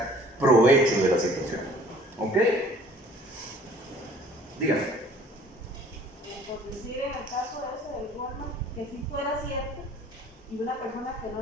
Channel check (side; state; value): both; normal; correlation 0.53